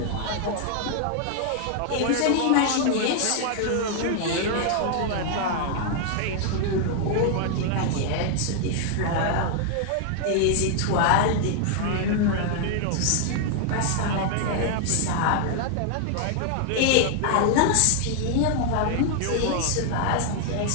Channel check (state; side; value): different; both; correlation 0.00